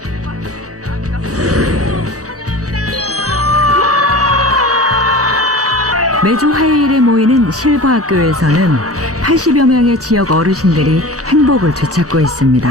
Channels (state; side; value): normal; both; correlation 0.36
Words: 매주 화요일에 모이는 실버학교에서는 80여 명의 지역 어르신들이 행복을 되찾고